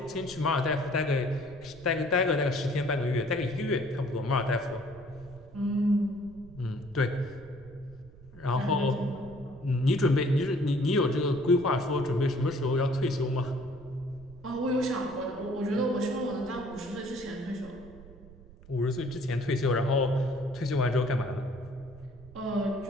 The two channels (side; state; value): right; noise; rumble, 20 dB below the sound